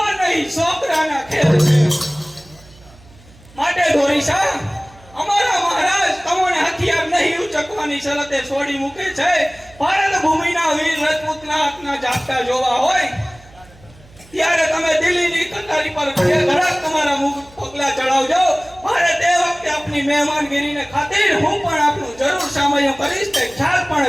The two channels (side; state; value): right; noise; hum, 25 dB below the sound